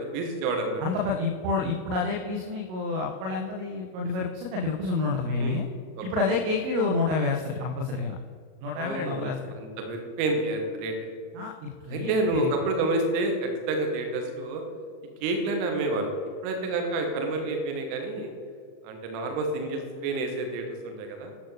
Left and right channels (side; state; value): left; late; 38 ms